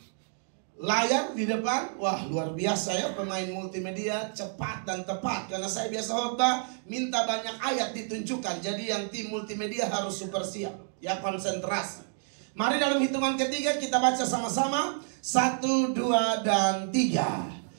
layar di depan. Wah, luar biasa ya, pemain multimedia cepat dan tepat. Karena saya biasa khotbah minta banyak ayat ditunjukkan. Jadi yang tim multimedia harus super siap, ya, konsentrasi. Mari dalam hitungan ketiga kita baca sama-sama. 1, 2, dan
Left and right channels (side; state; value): left; silent; 57 dB below the other